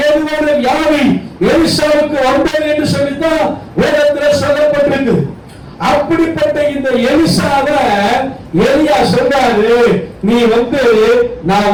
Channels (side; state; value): both; identical; correlation 1.00